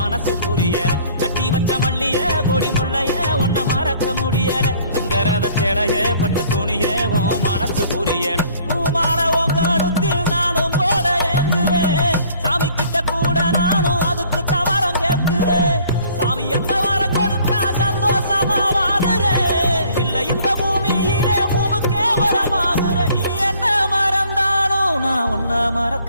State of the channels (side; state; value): both; inverted; correlation -0.56